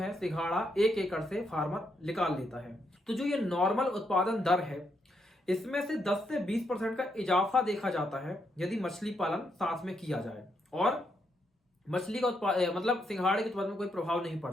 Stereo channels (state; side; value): normal; both; correlation 0.78